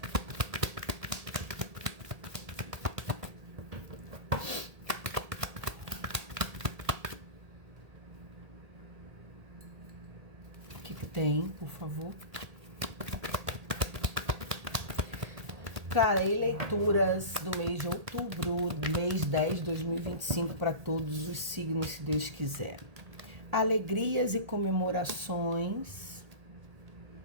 O que tem, por favor? Trarei leituras do mês de outubro, mês 10 de 2025, para todos os signos, se Deus quiser. Alegrias e comemorações,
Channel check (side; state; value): left; late; 1.8 ms